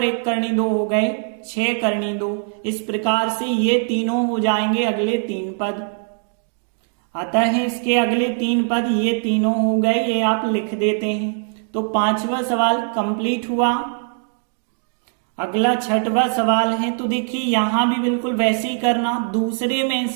1 करनी 2 हो गए 6 करनी 2। इस प्रकार से ये तीनों हो जाएंगे अगले 3 पद। अतः इसके अगले 3 पद ये तीनों हो गए, ये आप लिख देते हैं। तो 5वां सवाल कंप्लीट हुआ। अगला 6वां सवाल है, तो देखिए यहां भी बिल्कुल वैसे ही करना, दूसरे में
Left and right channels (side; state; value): left; silent; 61 dB below the other